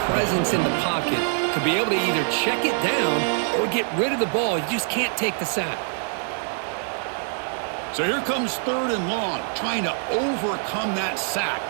presence in the pocket to be able to either check it down or get rid of the ball. You just can't take the sack. So here comes third and long, trying to overcome that sack.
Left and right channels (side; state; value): left; silent; 58 dB below the other